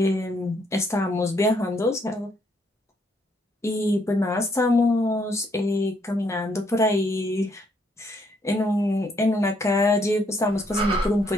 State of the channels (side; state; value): both; normal; correlation 0.71